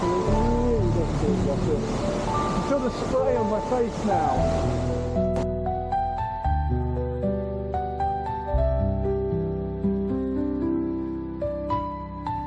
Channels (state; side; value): identical; both; correlation 1.00